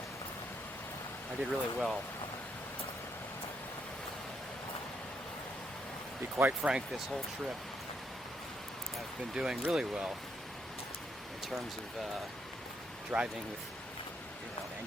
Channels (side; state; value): both; normal; correlation 0.76